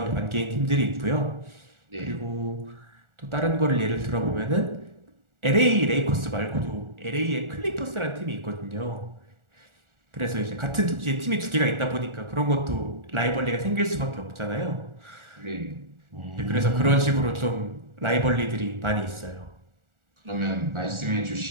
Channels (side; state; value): left; late; 1.4 ms